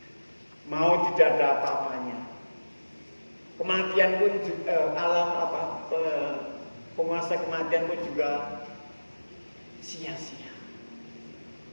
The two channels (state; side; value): inverted; both; correlation -1.00